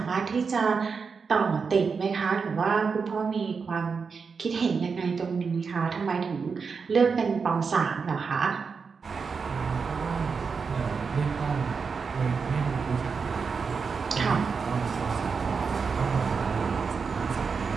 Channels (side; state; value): left; quieter; 5.4 dB